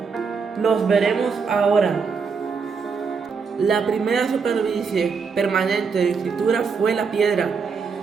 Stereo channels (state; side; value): quieter; left; 5.4 dB